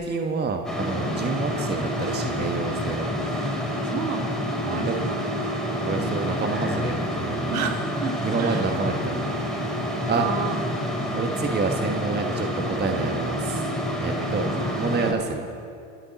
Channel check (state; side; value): normal; both; correlation 0.37